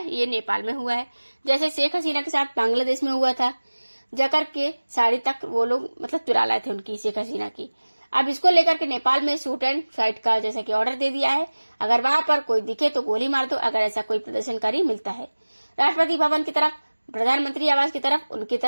ये नेपाल में हुआ है। जैसे शेख हसीना के साथ बांग्लादेश में हुआ था, जाकर के साड़ी तक वो लोग मतलब चुरा लाए थे उनकी, शेख हसीना की। अब इसको लेकर के नेपाल में शूट एंड फाइट का जैसा कि ऑर्डर दे दिया है, अगर वहां पर कोई दिखे तो गोली मार दो, अगर ऐसा कोई प्रदर्शनकारी मिलता है। राष्ट्रपति भवन की तरफ, प्रधानमंत्री आवास की तरफ, उनकी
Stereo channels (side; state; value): both; inverted; correlation -1.00